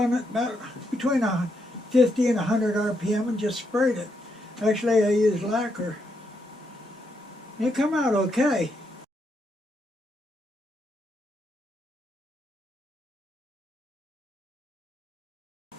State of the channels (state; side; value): normal; both; correlation 0.79